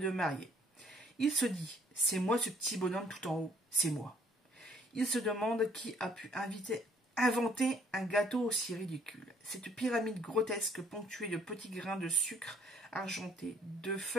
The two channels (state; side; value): normal; both; correlation 0.63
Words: mariés. Il se dit, c'est moi ce petit bonhomme tout en haut, c'est moi. Il se demande qui a pu inventer un gâteau aussi ridicule. Cette pyramide grotesque ponctuée de petits grains de sucre argenté, de